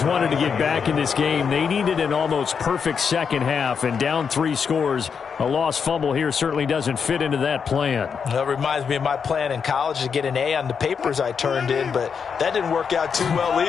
wanted to get back in this game, they needed an almost perfect second half. And down 3 scores, a lost fumble here certainly doesn't fit into that plan. That reminds me of my plan in college to get an A on the papers I turned in, but that didn't work out too well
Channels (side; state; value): right; quieter; 6.4 dB